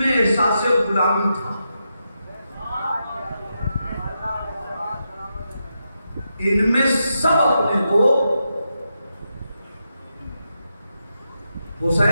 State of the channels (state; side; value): inverted; both; correlation -0.86